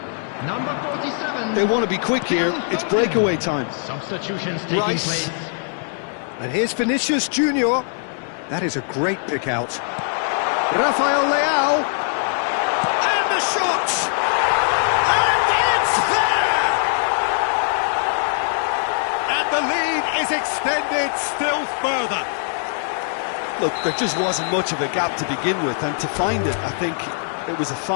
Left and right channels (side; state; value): right; silent; 65 dB below the other